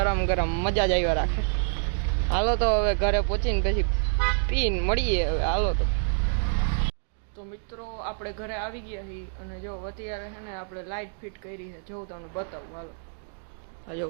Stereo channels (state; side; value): silent; left; digital silence